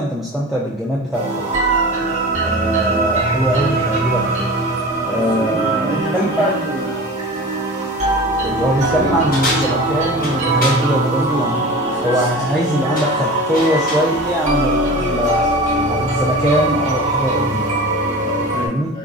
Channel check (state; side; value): normal; both; correlation 0.35